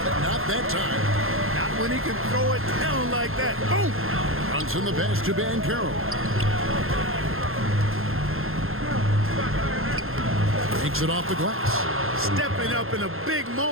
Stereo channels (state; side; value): late; left; 0.61 ms